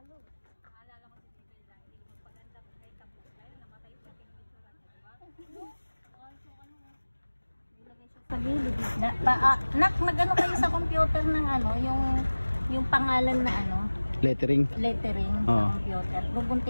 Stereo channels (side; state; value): both; inverted; correlation -1.00